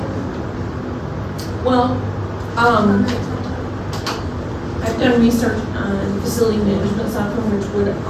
Well, Comment. I've done research on facility management software, which would,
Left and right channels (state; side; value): identical; both; correlation 1.00